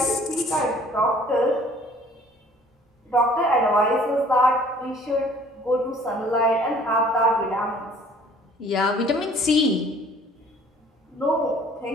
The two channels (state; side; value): normal; both; correlation 0.54